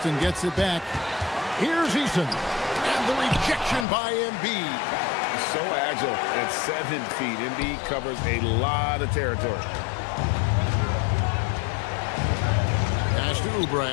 gets it back. Here's Eason. And the rejection by Embiid. So agile at 7 feet. Embiid covers a lot of territory. Pass to Oubre.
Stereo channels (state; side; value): drops out; right; at 3.9 s